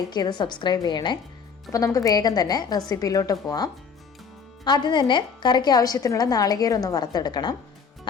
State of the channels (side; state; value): right; quieter; 6.0 dB